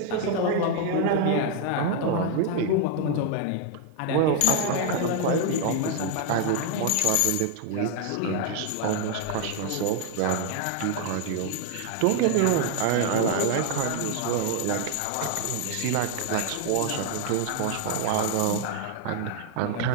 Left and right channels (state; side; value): different; both; correlation 0.00